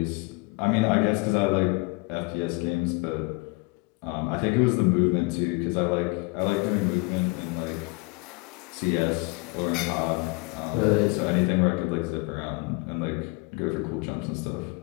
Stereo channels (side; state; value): right; quieter; 27.1 dB